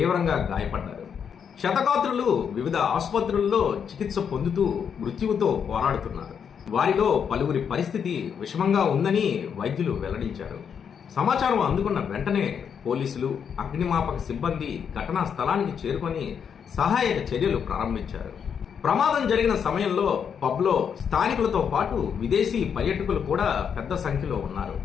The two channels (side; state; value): right; quieter; 7.4 dB